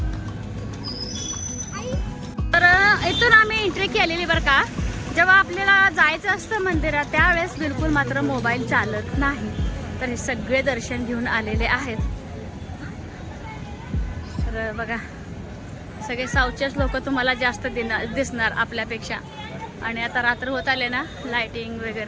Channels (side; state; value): both; identical; correlation 1.00